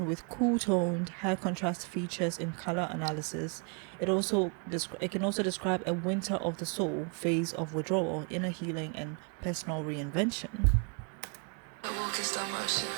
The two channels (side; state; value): left; quieter; 37.0 dB